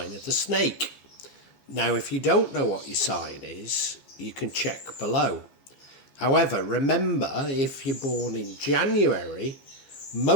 of the snake. Now, if you don't know what your sign is, you can check below. However, remember, if you're born in January,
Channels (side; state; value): right; late; 15 ms